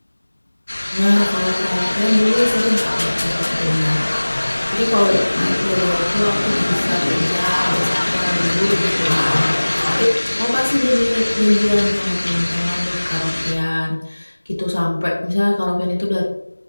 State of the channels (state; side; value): inverted; both; correlation -1.00